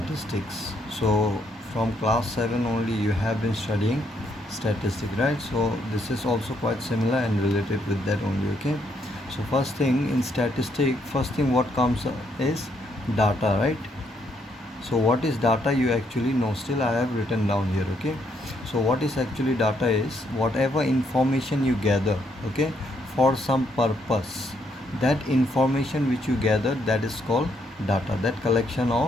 So from class 7 only you have been studying statistics, right? So this is also quite similar and related with that only, okay? So first thing in statistics, first thing what comes is data, right? So what is data you actually know, still I have written down here, okay? So what is actually data is whatever information you gather, okay, for some purpose. That information which you gather, that is called data. That collection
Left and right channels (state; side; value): normal; both; correlation 0.74